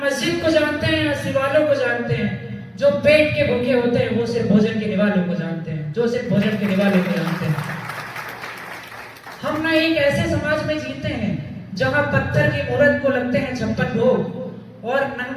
मस्जिद को जानते हैं, न शिवालयों को जानते हैं। जो पेट के भूखे होते हैं वो सिर्फ भोजन के निवालों को जानते हैं, जो सिर्फ भोजन के निवालों को जानते हैं। हम ना एक ऐसे समाज में जीते हैं जहां पत्थर की मूर्त को लगते हैं 56 भोग और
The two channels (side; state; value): both; identical; correlation 1.00